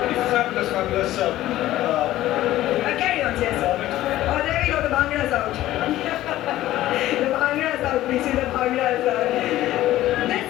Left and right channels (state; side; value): quieter; right; 14.8 dB